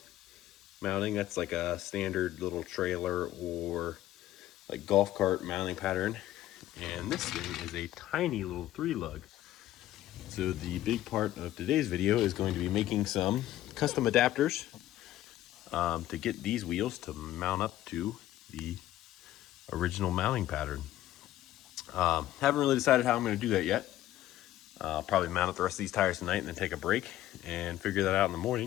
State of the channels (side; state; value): right; quieter; 14.0 dB